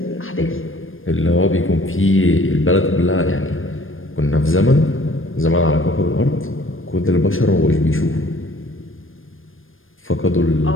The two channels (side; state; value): right; late; 0.59 ms